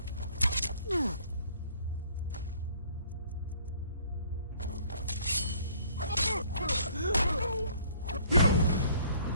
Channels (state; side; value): inverted; both; correlation -0.58